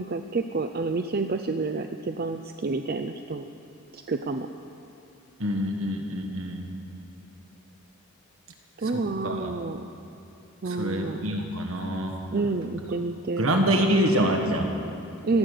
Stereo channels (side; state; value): both; normal; correlation 0.42